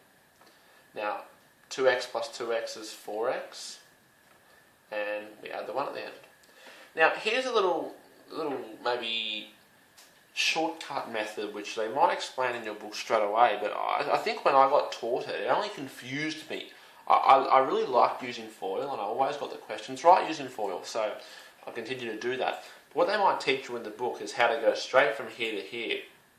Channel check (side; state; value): both; identical; correlation 1.00